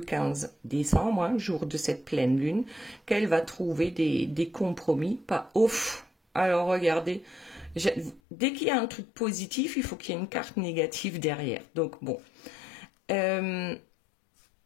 décembre, hein, jour de cette pleine lune, qu'elle va trouver des compromis. Pas ouf. Alors, regardez, dès qu'il y a un truc positif, il faut qu'il y ait une carte négative derrière. Donc, bon. Elle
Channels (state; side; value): drops out; right; at 8.2 s